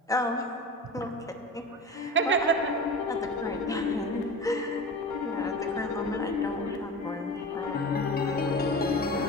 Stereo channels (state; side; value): normal; both; correlation 0.31